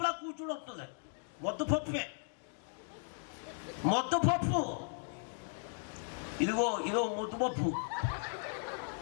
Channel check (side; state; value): right; silent; 53 dB below the other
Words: కూర్చుని వస్తుంది. మొత్తపప్పే, మొత్తపప్పు. ఇదిగో ముద్దుపప్పు.